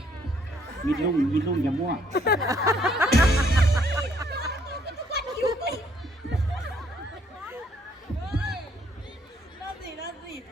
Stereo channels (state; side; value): normal; both; correlation 0.66